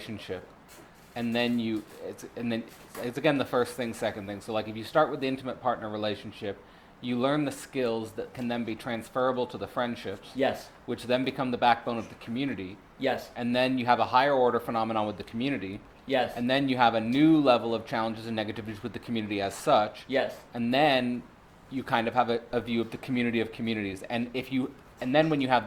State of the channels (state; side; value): identical; both; correlation 1.00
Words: and then it's again the first thing, second thing. So like if you start with the intimate partner relationship, you learn the skills that can then be transferable to the friendships. Yes. Which then become the backbone of the community. Yes. And then you have a higher order phenomenon with the community. Yes. And then you have a new level of challenges and negativities with the community as such. Yes. And then you kind of have a view of the community of communities. And then when you